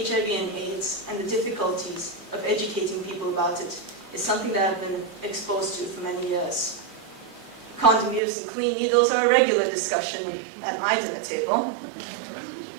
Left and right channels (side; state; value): left; drops out; at 8.2 s